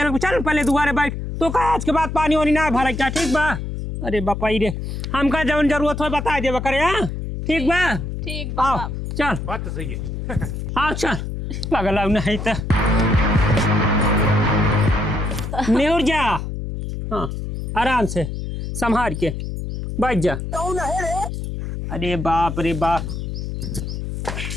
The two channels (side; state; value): left; noise; hum, 5 dB below the sound